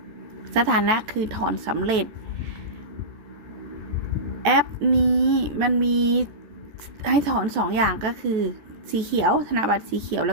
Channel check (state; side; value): late; left; 14 ms